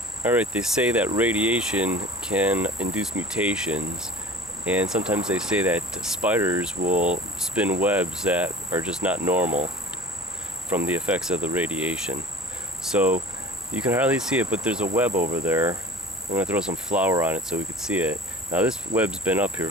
Alright, they say that radiation can induce mutations, and sometimes they say that spiders will spin webs that are just not normal from the effects of the radiation. So you can hardly see it, but there's a web over there. I'm going to throw some flour on it so we can see it. Now this web's been up here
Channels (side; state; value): both; normal; correlation 0.42